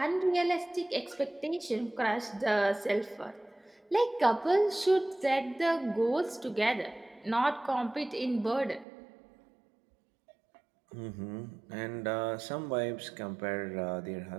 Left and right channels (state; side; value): drops out; left; at 8.8 s